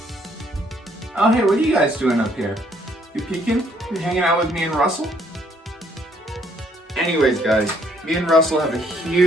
Oh, hey, what are you guys doing up here? You peeking? You hanging out with me and Russell? Anyways, guys, me and Russell have a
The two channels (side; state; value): both; normal; correlation 0.67